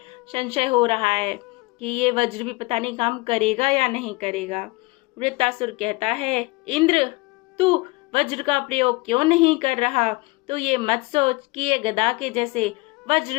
संशय हो रहा है कि ये वज्र भी पता नहीं काम करेगा या नहीं करेगा। वृत्तासुर कहता है, इंद्र तू वज्र का प्रयोग क्यों नहीं कर रहा? तो ये मत सोच कि ये गदा के जैसे वज्र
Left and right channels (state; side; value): quieter; right; 24.0 dB